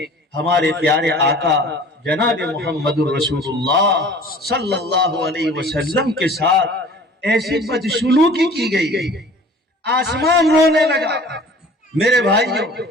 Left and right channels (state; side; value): normal; both; correlation 0.46